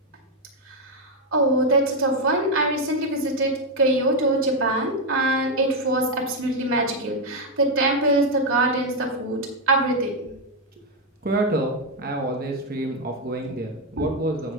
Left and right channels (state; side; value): normal; both; correlation 0.04